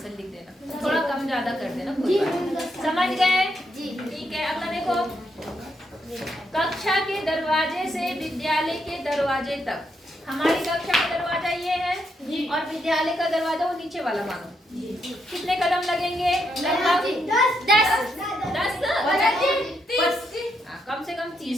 लिख देना, थोड़ा कम ज्यादा कर देना, कोई बात नहीं। समझ गए? ठीक है। अगला देखो, कक्षा के दरवाजे से विद्यालय के दरवाजे तक। हमारी कक्षा का दरवाजा ये है और विद्यालय का दरवाजा वो नीचे वाला मानो, कितने कदम लगेंगे? लगभग 10। कम से कम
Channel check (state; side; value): normal; both; correlation 0.79